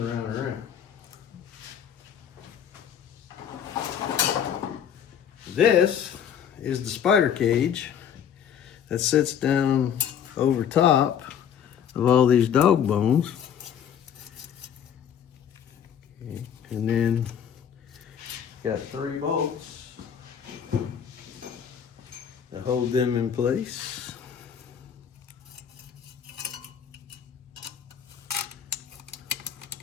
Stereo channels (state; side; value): quieter; right; 8.6 dB